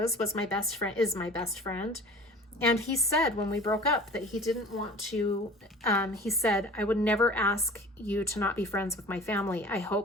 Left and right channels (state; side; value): normal; both; correlation 0.43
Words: is my best friend. And he said when we broke up that he didn't want to, he said, I would never ask you to not be friends with my family. I